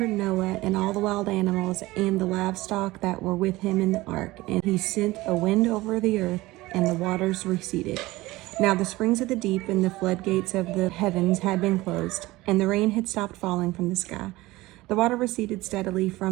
Noah and all the wild animals and the livestock that were with him in the ark, and he sent a wind over the earth, and the waters receded. Now the springs of the deep and the floodgates of the heavens had been closed, and the rain had stopped falling from the sky. The water receded steadily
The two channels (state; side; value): quieter; left; 19.3 dB